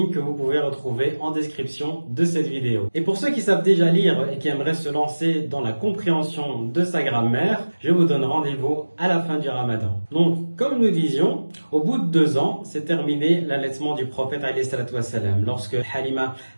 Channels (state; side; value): inverted; both; correlation -1.00